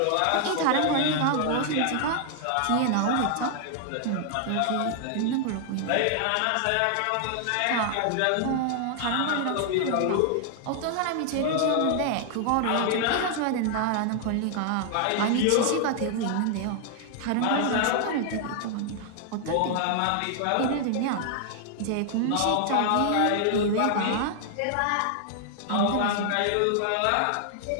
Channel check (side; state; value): both; different; correlation 0.00